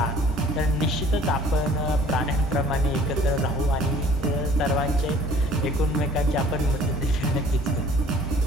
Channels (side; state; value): both; normal; correlation 0.52